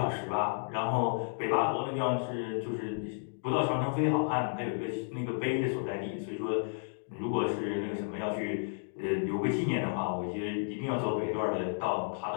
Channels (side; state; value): right; silent; digital silence